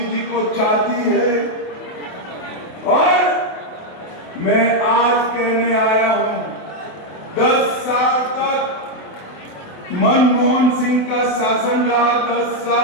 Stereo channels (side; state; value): right; late; 28 ms